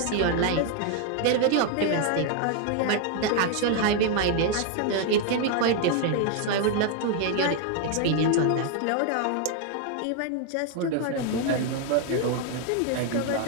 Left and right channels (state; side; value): different; both; correlation 0.00